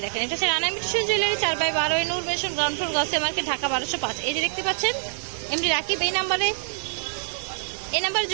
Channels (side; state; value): left; silent; 61 dB below the other